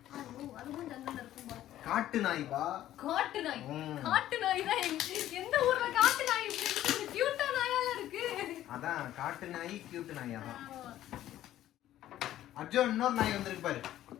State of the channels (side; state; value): right; quieter; 13.1 dB